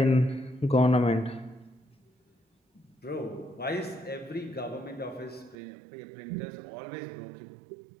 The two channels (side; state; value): left; drops out; at 5.6 s